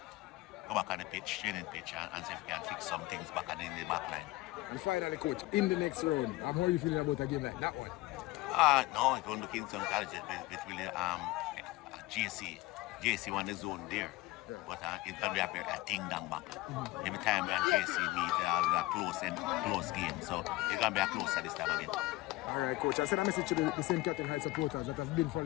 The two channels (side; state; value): right; quieter; 19.4 dB